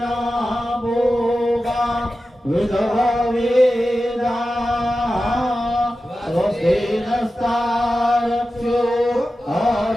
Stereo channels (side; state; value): both; normal; correlation 0.93